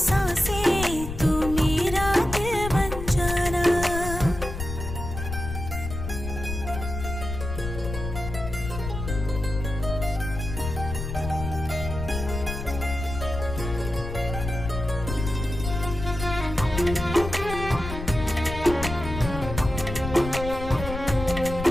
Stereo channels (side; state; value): left; noise; rumble, 7 dB below the sound